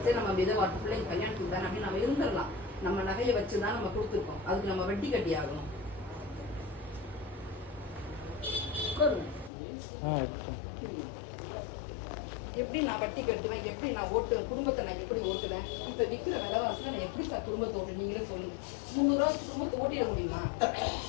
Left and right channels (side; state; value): right; drops out; at 9.5 s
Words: சரி, நம்ம விதவாட்டு பிள்ளைங்க கல்யாணத்துக்கு தானே அப்படின்னு நம்ம இருந்துடலாம். நம்ம நகையை வச்சுதான் நம்ம கொடுத்துருக்கோம், அதுக்கு நம்ம வட்டி கட்டி ஆகணும். எப்படி நான் வட்டி கட்டுவேன்? எப்படி நான் குடும்பத்தை நான் எப்படி ஓட்டுவேன்? இப்ப விற்கிற விலைவாசல நான் எப்படி சார் குடும்பத்தை ஓட்டு? நீங்களே சொல்லுங்க. 300 ரூபா குடும்பத்தை ஓட்டிட முடியுமா?